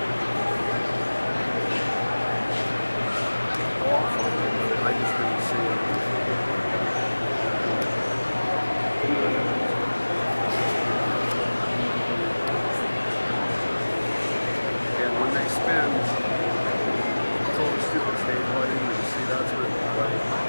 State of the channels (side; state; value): both; inverted; correlation -1.00